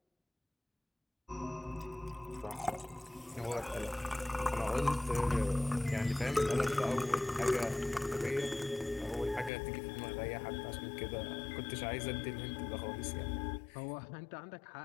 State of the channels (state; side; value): drops out; right; at 9.5 s